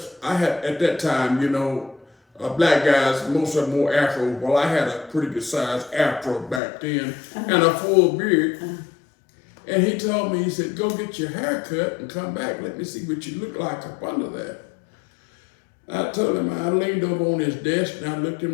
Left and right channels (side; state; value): right; drops out; at 6.6 s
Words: I had, at that time, you know, black guys, most of them wore afro. Well, I had a pretty good sized afro back then, and a full beard. And he told me, he said, go get your hair cut and come back. Let me see what you look like up under that. I told him, I leaned over on his desk and I looked him